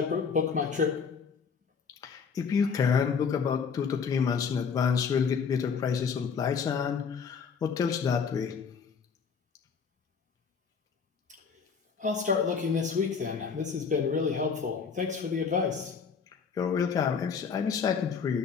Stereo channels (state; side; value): quieter; right; 6.0 dB